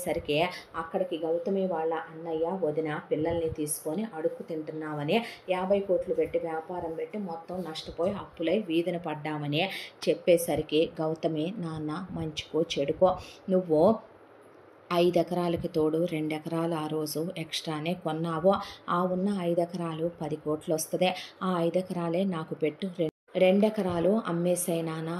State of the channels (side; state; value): both; identical; correlation 1.00